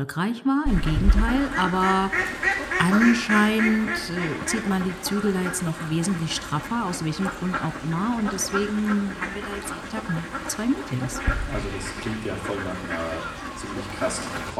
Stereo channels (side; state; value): both; identical; correlation 1.00